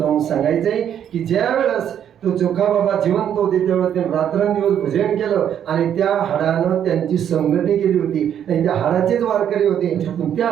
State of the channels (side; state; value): left; quieter; 9.5 dB